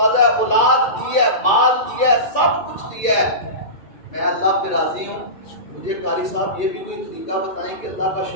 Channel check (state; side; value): late; right; 2.3 ms